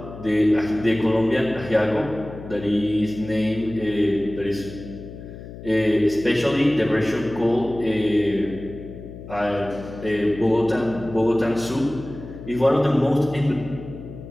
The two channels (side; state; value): left; noise; hum, 13 dB below the sound